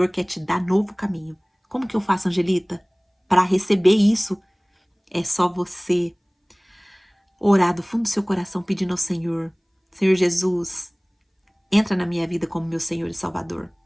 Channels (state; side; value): identical; both; correlation 1.00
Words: quer te dar novo caminho. Como que eu faço, Angelita? Para receber isso, é só você orar do fundo do seu coração pedindo ao Senhor. Senhor Jesus, entra na minha vida como meu Senhor e Salvador.